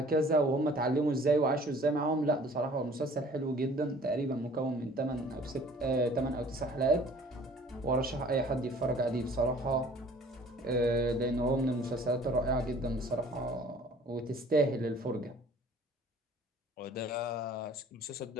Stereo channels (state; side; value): normal; both; correlation 0.52